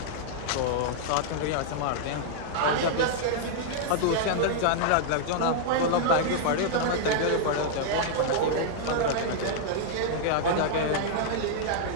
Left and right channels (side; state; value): both; different; correlation -0.01